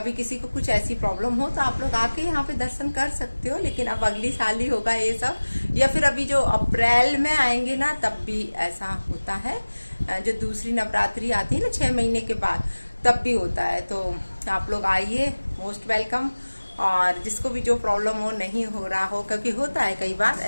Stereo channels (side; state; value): both; inverted; correlation -1.00